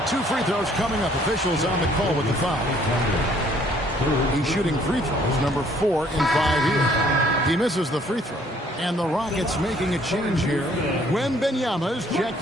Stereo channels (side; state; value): both; normal; correlation 0.62